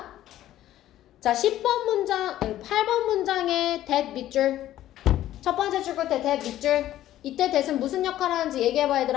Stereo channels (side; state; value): right; quieter; 13.3 dB